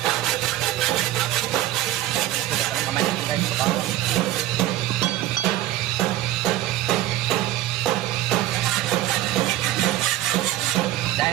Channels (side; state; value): left; quieter; 14.4 dB